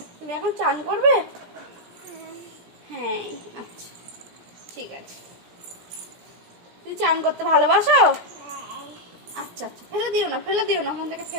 তুমি এখন চান করবে? হ্যাঁ আচ্ছা ঠিক আছে। তুমি চান করতে ভালোবাসো? আচ্ছা আচ্ছা, ফেলে দিও না, ফেলে দিও না, ওখান থেকে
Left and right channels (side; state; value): left; late; 17 ms